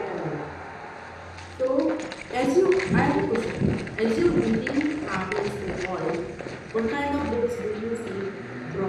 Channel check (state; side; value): identical; both; correlation 1.00